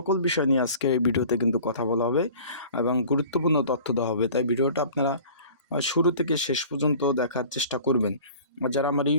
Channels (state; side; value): inverted; both; correlation -0.45